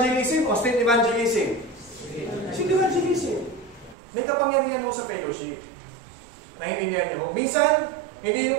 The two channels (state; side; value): drops out; left; at 4.0 s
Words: o street evangelism? Street evangelism. May kapangyarihan mo sa fellowship. Naiintindihan niyo mo. Minsan,